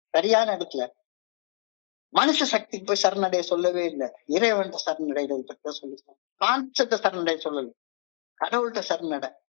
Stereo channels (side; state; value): right; silent; 60 dB below the other